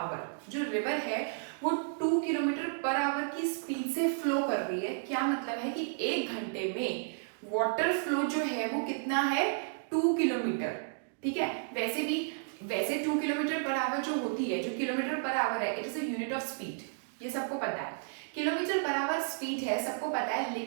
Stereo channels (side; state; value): left; silent; digital silence